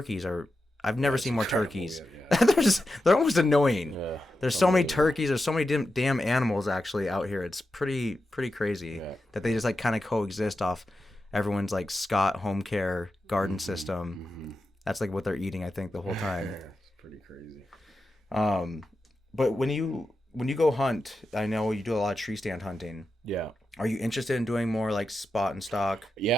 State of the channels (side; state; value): both; normal; correlation 0.90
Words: are... I've never seen more turkeys. Yeah. They're almost annoying. Yeah, there's so many turkeys. There's so many damn animals actually out here. It's pretty crazy that they just like kind of coexist off everyone's like Scott home care garden system. Mm-hmm. That's like what they're eating, I think, the whole time. Yeah, it's pretty crazy. But when you go hunt, I know you do a lot of tree stand hunting. Yeah. Are you interested in doing more like spot and stalk?